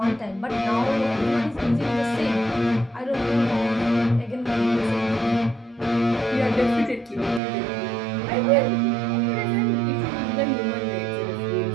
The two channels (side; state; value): left; drops out; at 7.4 s